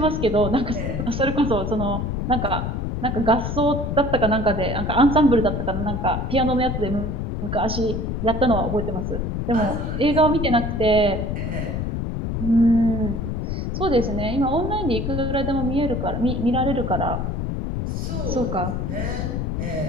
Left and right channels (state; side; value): noise; left; rumble, 2 dB below the sound